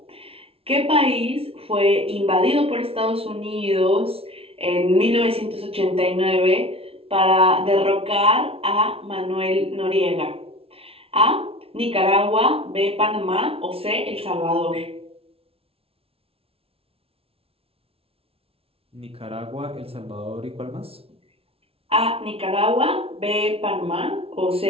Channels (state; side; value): late; left; 0.27 ms